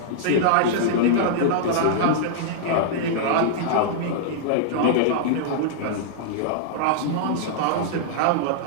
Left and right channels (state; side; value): different; both; correlation -0.02